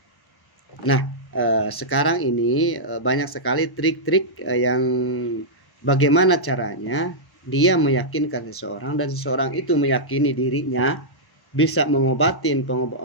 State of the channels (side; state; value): right; late; 1.1 ms